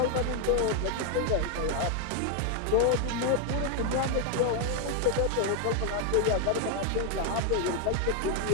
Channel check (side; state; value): both; different; correlation 0.01